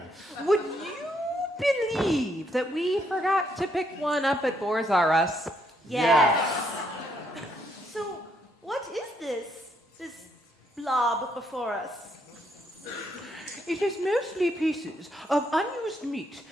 Would you believe that we forgot to pick one up at Boars R Us? Yes. So, what is this blob before us? It is mostly pieces of unused meat,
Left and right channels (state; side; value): normal; both; correlation 0.74